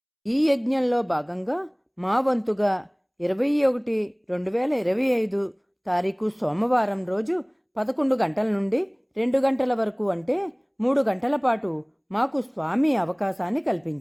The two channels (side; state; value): both; identical; correlation 1.00